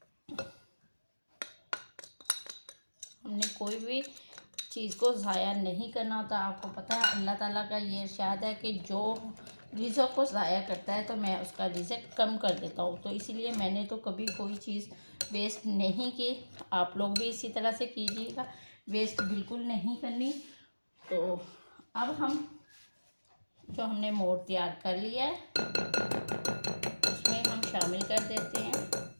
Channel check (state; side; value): inverted; both; correlation -1.00